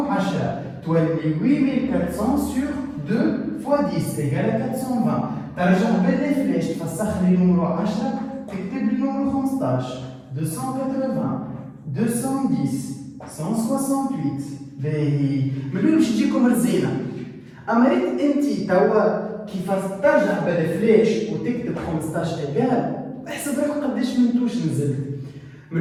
10 تولي 8400 sur 2 fois 10 égale à 420. ترجع باللي فلاش تفسخ لي نمرو 10 تكتب لي نمرو 15 280 210 168. باهي ملي باش تجيكم رزينه. اما ريت انت توا كيفاش ترجع بالفلاش وتكتب 15 ايكال احسب روحك قداش من توش نزلت.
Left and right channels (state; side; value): identical; both; correlation 1.00